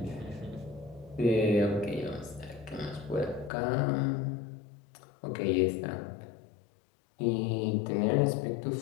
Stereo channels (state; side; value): drops out; right; at 3.5 s